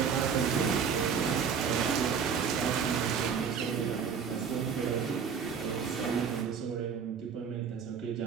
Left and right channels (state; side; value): quieter; left; 6.6 dB